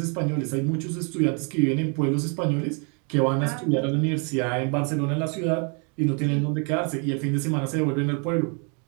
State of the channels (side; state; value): left; quieter; 37.0 dB